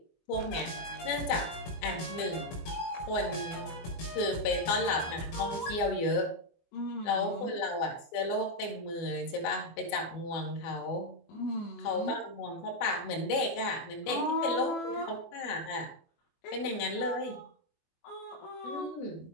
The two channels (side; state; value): right; late; 24 ms